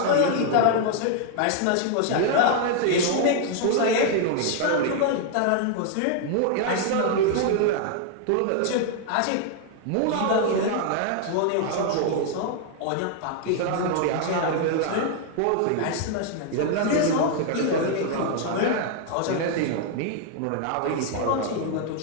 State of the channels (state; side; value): different; both; correlation 0.00